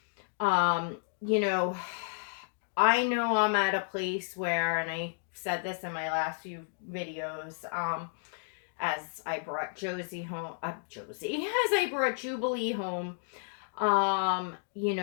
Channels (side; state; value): right; silent; digital silence